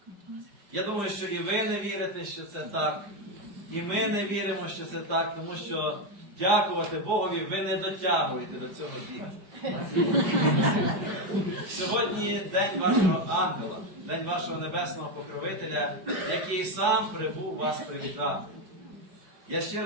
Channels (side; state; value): left; late; 5.1 ms